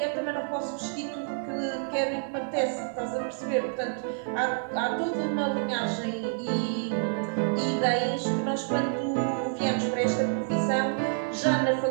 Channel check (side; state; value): left; silent; digital silence